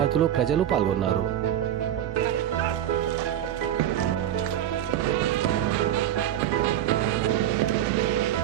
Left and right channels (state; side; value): quieter; left; 11.3 dB